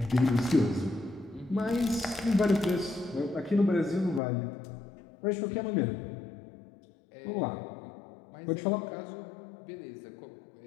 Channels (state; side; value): drops out; right; at 4.2 s